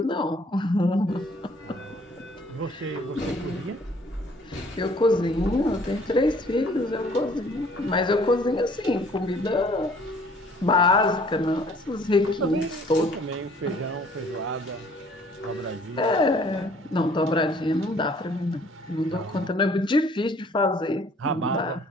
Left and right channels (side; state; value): both; normal; correlation 0.57